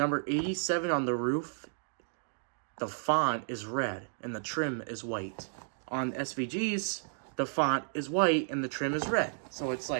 87 on the roof, the font is red and the trim is white. On SVGs, the font is white and the trim is red. So it's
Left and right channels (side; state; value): left; silent; digital silence